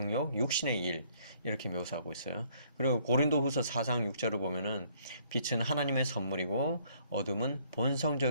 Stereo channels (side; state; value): both; inverted; correlation -0.65